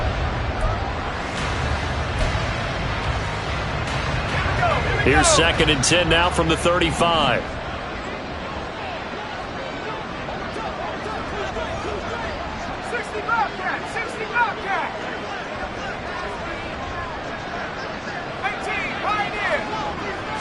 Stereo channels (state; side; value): identical; both; correlation 1.00